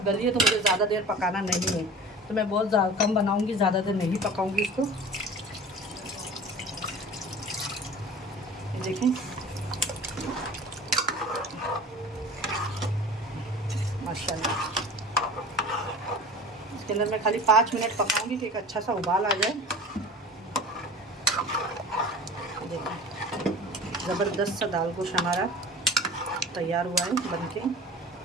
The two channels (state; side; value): normal; both; correlation 0.39